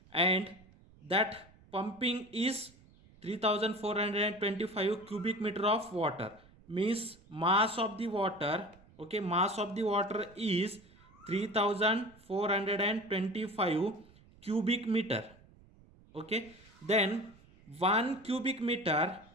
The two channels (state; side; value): noise; right; rumble, 26 dB below the sound